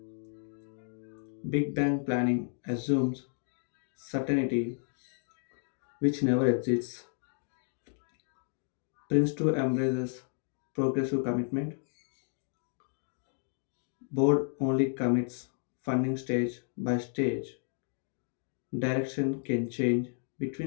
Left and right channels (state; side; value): silent; right; 56 dB below the other